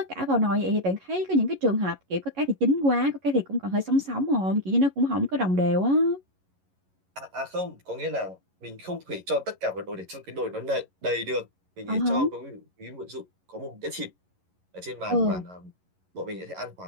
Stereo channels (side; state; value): left; late; 11 ms